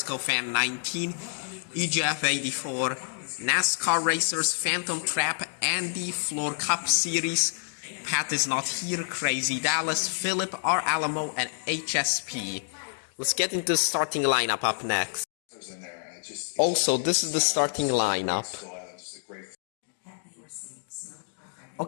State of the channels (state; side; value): silent; right; digital silence